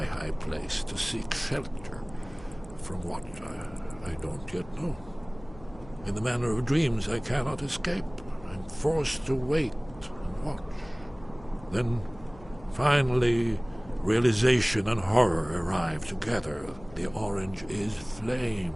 high place to seek shelter from what I don't yet know. In the manner of dreams I cannot escape. I'm forced to wait and watch. Then, finally, realization and horror arrive together. The orange is flame,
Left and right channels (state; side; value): noise; left; hum, 20 dB below the sound